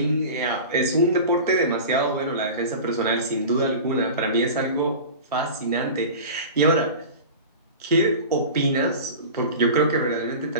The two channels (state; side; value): inverted; both; correlation -0.34